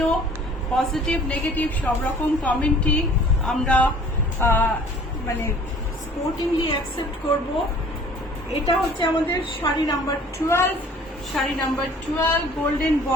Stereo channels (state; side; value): normal; both; correlation 0.51